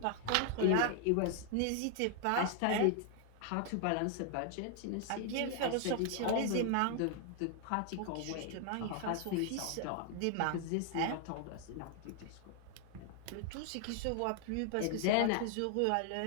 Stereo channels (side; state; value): both; different; correlation 0.00